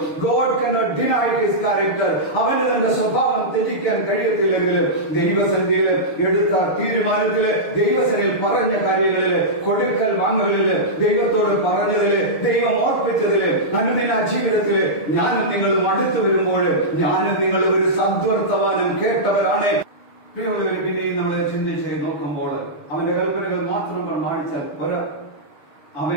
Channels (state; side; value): late; right; 6.7 ms